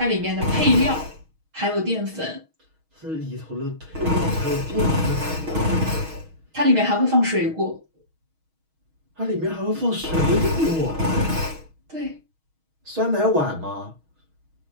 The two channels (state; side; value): late; left; 6.3 ms